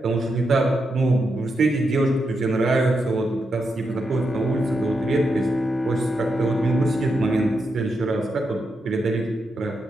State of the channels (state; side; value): normal; both; correlation 0.84